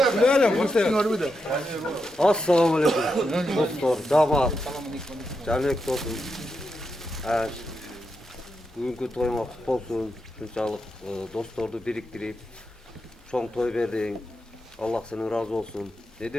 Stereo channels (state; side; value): normal; both; correlation 0.85